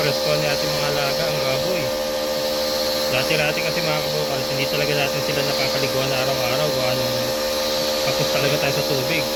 ni ating mga alaga ang baboy. Dati-dati kasi mga kabukal, hindi talaga natin sila napapaliguan na araw-araw gawa nung tapos talaga tayo sa tubig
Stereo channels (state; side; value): identical; both; correlation 1.00